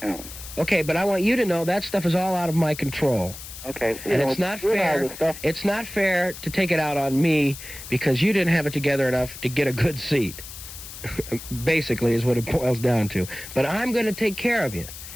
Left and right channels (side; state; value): left; noise; hiss, 13 dB below the sound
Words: you know. Okay, but I want you to know that stuff is all out of my control. Okay. And it's not fair. It's not fair to take it out on me because you didn't have it together enough to get a good seat. Basically, is what it boils down to. But I'm going to take care of you